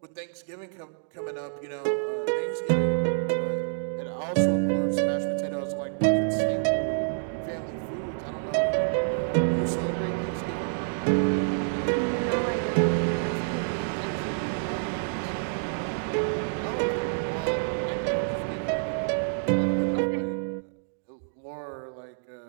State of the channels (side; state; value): left; silent; digital silence